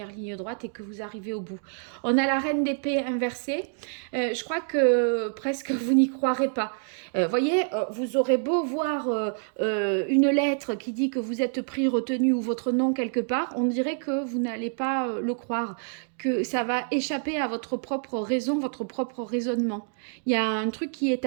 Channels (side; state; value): left; silent; 60 dB below the other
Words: ligne droite et que vous arrivez au bout. On a la reine d'épée inversée. Je crois que presque vous n'y croirez pas. Voyez, vous aurez beau voir une lettre qui dit que vous êtes pris, retenu ou votre nom quelque part, on dirait que vous n'allez pas le croire, que ça va échapper à votre propre raison, votre propre raisonnement. Il y a un truc qui est